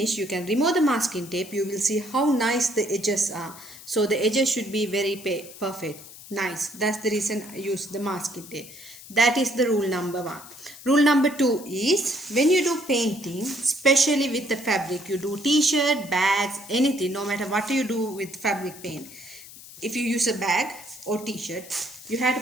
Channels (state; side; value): noise; left; hiss, 17 dB below the sound